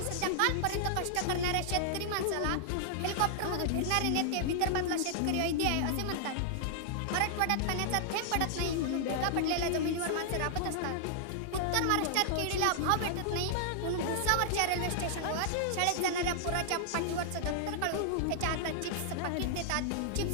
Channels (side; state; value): both; different; correlation -0.01